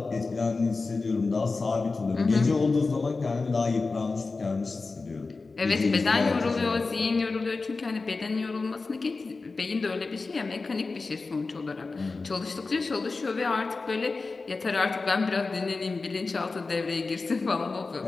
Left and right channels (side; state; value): right; quieter; 3.9 dB